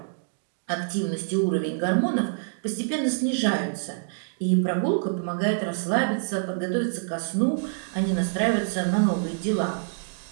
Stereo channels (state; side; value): silent; left; digital silence